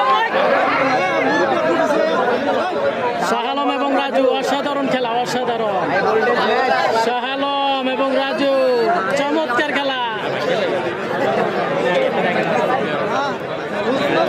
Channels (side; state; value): both; identical; correlation 1.00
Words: শাহালম এবং রাজু অসাধারণ খেলা অসাধারণ শাহালম এবং রাজু চমৎকার খেলা